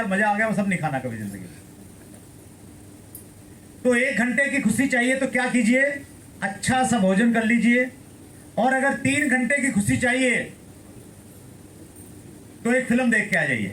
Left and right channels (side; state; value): both; identical; correlation 1.00